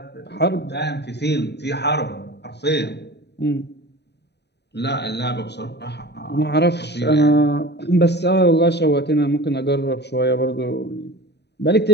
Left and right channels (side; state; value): right; late; 0.49 ms